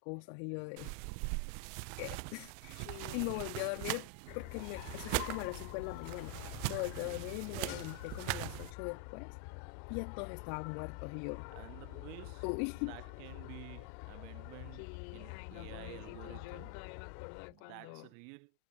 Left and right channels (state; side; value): different; both; correlation 0.01